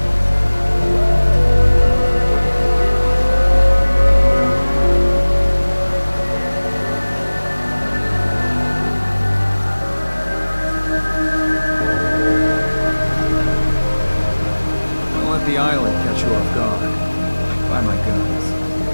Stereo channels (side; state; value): both; inverted; correlation -1.00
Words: don't let the island catch you off guard. Buy my guns.